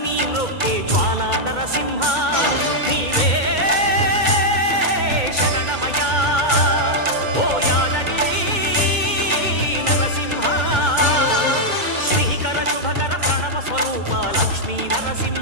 మ్రొక్కే జ్వాలా నరసింహ నీవే శరణమయా ఓ యాదగిరి నరసింహ శ్రీకర శుభకర ప్రణవ స్వరూప లక్ష్మీ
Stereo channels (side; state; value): left; late; 2.2 ms